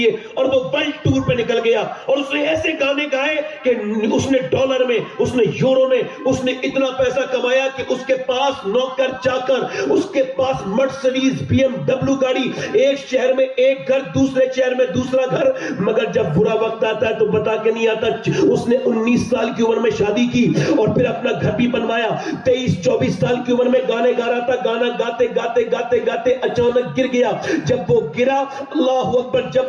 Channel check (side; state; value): both; identical; correlation 1.00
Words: اور وہ ورلڈ ٹور پہ نکل گیا اور اس نے ایسے گانے گائے کہ اس نے ڈالر میں, اس نے یورو میں, اس نے اتنا پیسہ کمایا کہ اس کے پاس نوکر چاکر, اس کے پاس مرسڈیز BMW گاڑی, ایک شہر میں ایک گھر, دوسرے شہر میں دوسرا گھر. مگر جب برا وقت آتا ہے تو بتا کے نہیں آتا. اس نے 19 سال کی عمر میں شادی کی اور پھر اپنا گھر بھی بنوایا. 23-24 سال کی عمر میں گانے گا رہا تھا, گانا گاتے گاتے گاتے گاتے اچانک گر گیا. جب وہ گرا, اللہ اکبر,